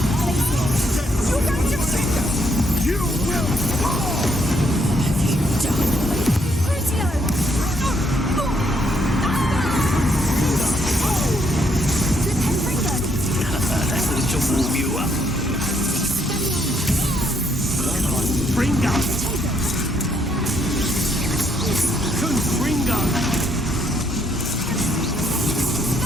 You will fall! Have you done? That's to warm you up. Come on, Fringo! Fringo!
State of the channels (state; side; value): normal; both; correlation 0.72